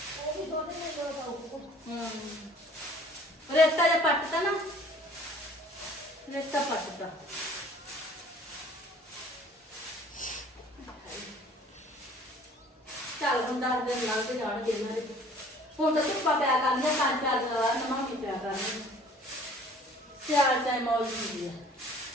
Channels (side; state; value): both; normal; correlation 0.52